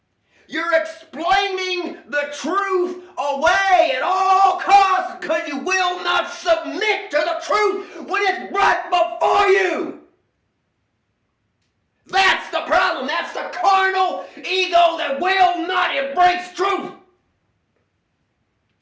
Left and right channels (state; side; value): identical; both; correlation 1.00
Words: You're explaining the truth away at all costs because you will not submit to the truth when it's brought before you. That's the problem. That's the carnal ego that will not embrace truth.